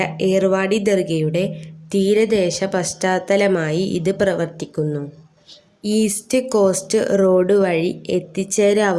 ഏർവാടി ദർഗയുടെ തീരദേശ പശ്ചാത്തലമായി ഇത് പ്രവർത്തിക്കുന്നു. ഈസ്റ്റ് കോസ്റ്റ് റോഡ് വഴി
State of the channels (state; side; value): identical; both; correlation 1.00